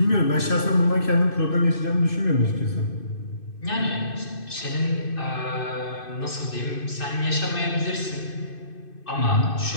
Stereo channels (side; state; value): right; late; 2.6 ms